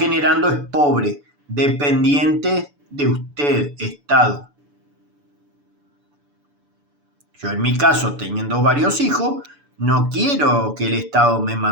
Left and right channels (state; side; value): late; left; 6.9 ms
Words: es pobre, dependiente de usted, Estado. Yo en mi caso, teniendo varios hijos, no quiero que el Estado me